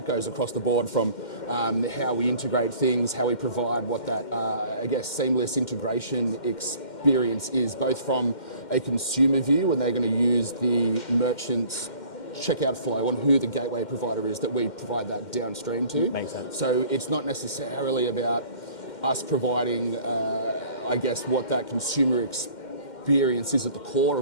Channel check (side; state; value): right; late; 2.1 ms